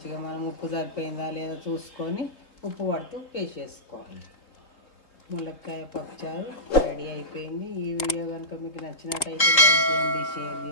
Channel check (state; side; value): late; right; 3.8 ms